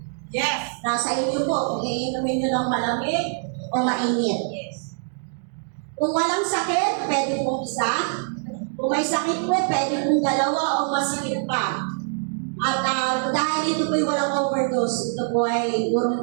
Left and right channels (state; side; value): silent; left; digital silence